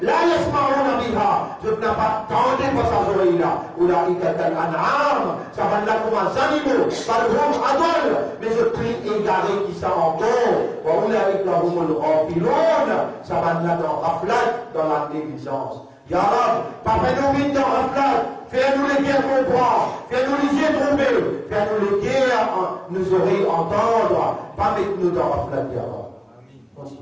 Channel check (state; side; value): identical; both; correlation 1.00